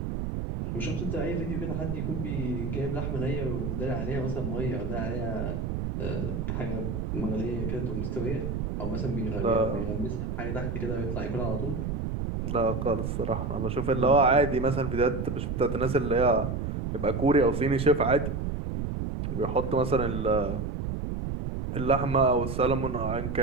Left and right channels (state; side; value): noise; right; rumble, 2 dB below the sound